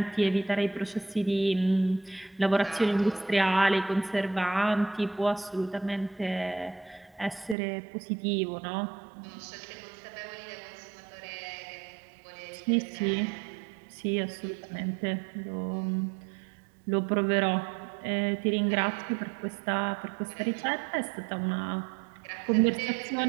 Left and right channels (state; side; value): drops out; left; at 7.6 s